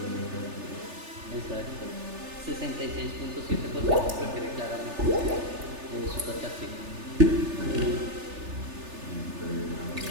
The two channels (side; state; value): left; late; 3.4 ms